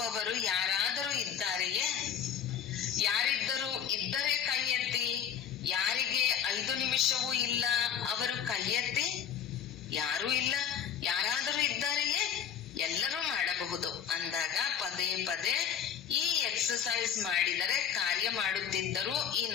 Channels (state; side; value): quieter; right; 8.6 dB